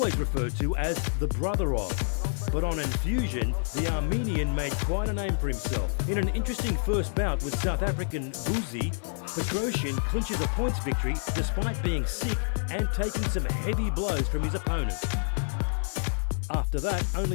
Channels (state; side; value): silent; right; digital silence